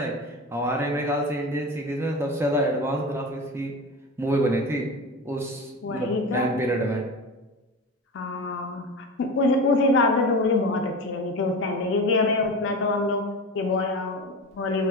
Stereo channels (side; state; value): both; normal; correlation 0.28